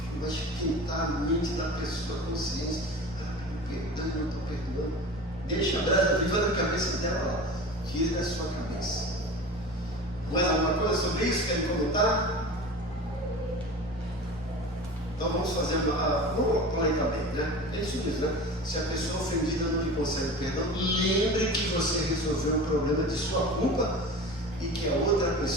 vai esquentar a mente da pessoa, a consciência. Perdão, eu não estou perdoando. Deixa a brasa viva na cabeça dela lá. Tire da sua cabeça. Mais alguma coisa sobre isso? Querem comentar? Então vamos fazer vamos plantar bem, né? É isso mesmo, né? Se a pessoa ofendida não lhe concede perdão, lembre que você resolveu um problema de sua culpa e que a outra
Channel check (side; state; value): both; normal; correlation 0.34